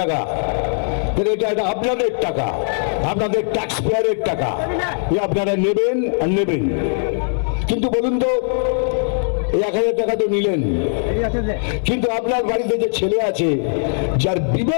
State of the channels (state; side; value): silent; right; digital silence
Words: টাকা। এটা আপনাদের টাকা, আপনাদের ট্যাক্স পেয়ারের টাকা, আপনারা নেবেন আর নেবেন। কিন্তু বলুন তো, এই 1000 টাকা তো নিলেন, কিন্তু আপনার বাড়িতে যে ছেলে আছে, যার